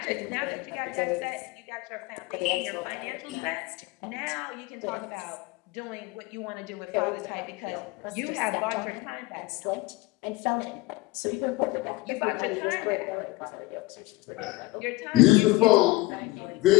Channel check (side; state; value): right; quieter; 21.2 dB